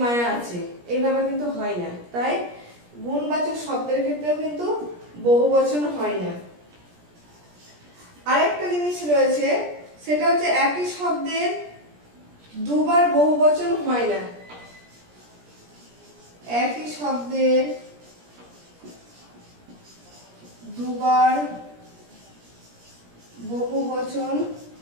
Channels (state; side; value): late; left; 17 ms